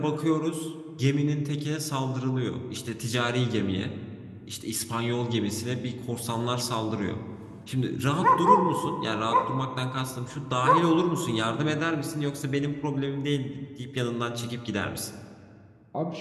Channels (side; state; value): both; identical; correlation 1.00